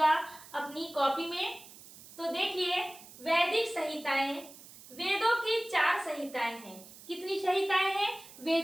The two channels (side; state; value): right; noise; hiss, 19 dB below the sound